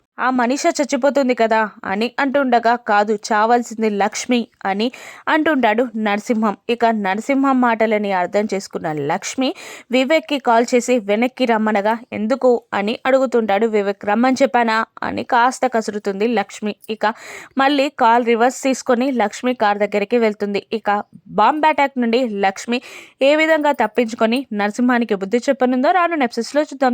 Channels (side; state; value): both; identical; correlation 1.00